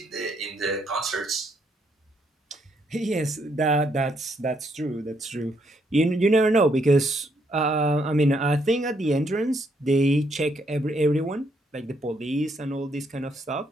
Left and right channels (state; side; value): normal; both; correlation 0.73